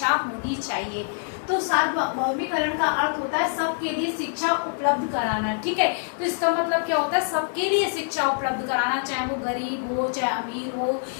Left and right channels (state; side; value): silent; right; digital silence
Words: होनी चाहिए। तो सार्वभौमिकरण का अर्थ होता है सबके लिए शिक्षा उपलब्ध कराना। ठीक है, तो इसका मतलब क्या होता है? सबके लिए शिक्षा उपलब्ध कराना, चाहे वो गरीब हो, चाहे अमीर हो,